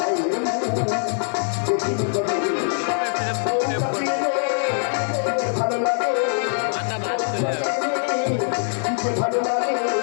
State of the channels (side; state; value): right; silent; digital silence